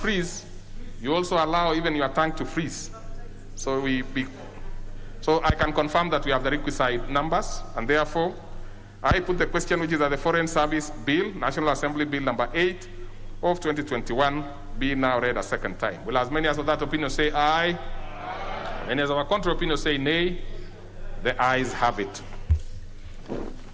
you also allow even your tongue to freeze. So so I can confirm that we have the requisite numbers, and therefore I put the question, which is that the Foreign Service Bill, National Assembly Bill number 8 of 2021, be now read a second time. Will as many as of that opinion say aye? Aye. Many as of our contrary opinion say nay? The ayes have it.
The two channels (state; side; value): identical; both; correlation 1.00